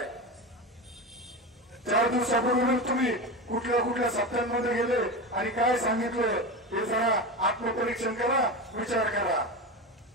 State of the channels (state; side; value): normal; both; correlation 0.22